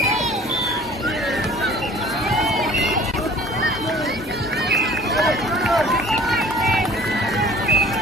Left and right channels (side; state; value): both; normal; correlation 0.49